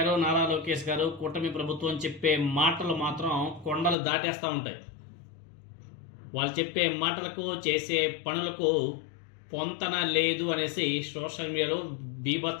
నారా లోకేష్ గారు, కూటమి ప్రభుత్వం చెప్పే మాటలు మాత్రం కొండలు దాటేస్తూ ఉంటాయి. వాళ్ళు చెప్పే మాటలకు చేసే పనులకు పొంతన లేదు అనేసి సోషల్ మీడియాలో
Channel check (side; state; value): right; drops out; at 4.0 s